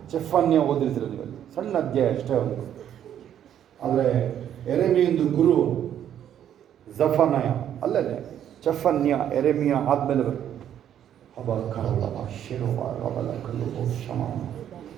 ಜೆಫನ್ಯ ಓದಿರ್ತೀರ ನೀವಲ್ಲಿ, ಸಣ್ಣ ಅಧ್ಯಾಯ ಅಷ್ಟೇ ಅವನು. ಆದರೆ ಯೆರೆಮೀಯಂದು ಗುರು ಜಫನ್ಯ ಅಲ್ಲದೆ ಜೆಫನ್ಯ. ಯೆರೆಮೀಯ ಆದಮೇಲೆ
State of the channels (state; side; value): quieter; left; 10.1 dB